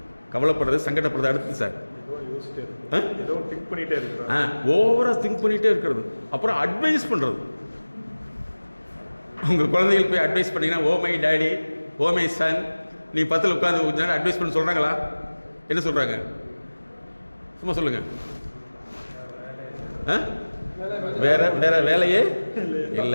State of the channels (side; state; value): both; inverted; correlation -1.00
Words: கவலைப்படுறது, சங்கடப்படுறது. அடுத்து சார் ஓவரா திங்க் பண்ணிகிட்டே இருக்கிறது. அப்புறம் அட்வைஸ் பண்ணுறது. உங்கள் குழந்தைகள் போய் அட்வைஸ் பண்ணிங்கன்னா, oh my daddy, oh my son, நீ 10ல் உட்காந்து அட்வைஸ் பண்ண சொல்கிறாங்களா? என்ன சொல்கிறாங்க? சும்மா சொல்லுங்க. வேற வேலையே